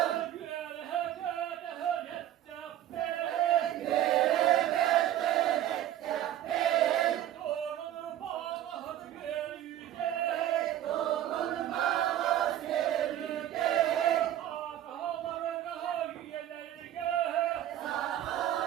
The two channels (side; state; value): left; quieter; 12.1 dB